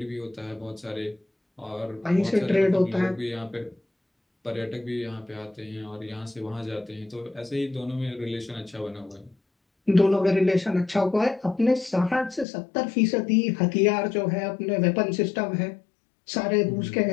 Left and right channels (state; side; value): drops out; right; at 12.5 s